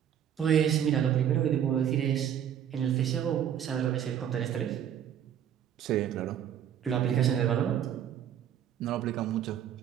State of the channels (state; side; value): quieter; left; 9.6 dB